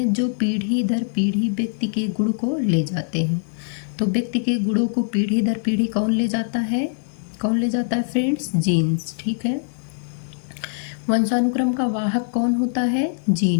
जो पीढ़ी दर पीढ़ी व्यक्ति के गुण को ले जाते हैं। तो व्यक्ति के गुणों को पीढ़ी दर पीढ़ी कौन ले जाता है? कौन ले जाता है फ्रेंड्स? जीन्स। ठीक है। वंशानुक्रम का वाहक कौन होता है?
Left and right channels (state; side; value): silent; right; 64 dB below the other